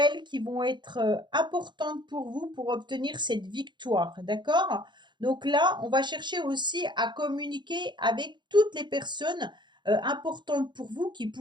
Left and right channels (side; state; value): left; late; 0.22 ms